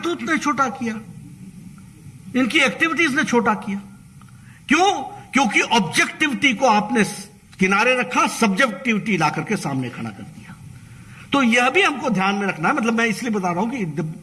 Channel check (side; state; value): both; identical; correlation 1.00